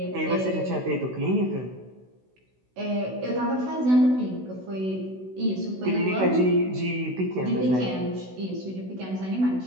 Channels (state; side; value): late; left; 16 ms